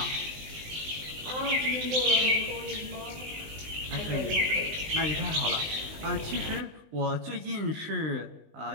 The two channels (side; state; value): left; late; 19 ms